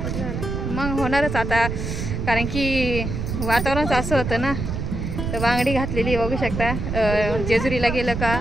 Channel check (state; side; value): noise; right; rumble, 4 dB below the sound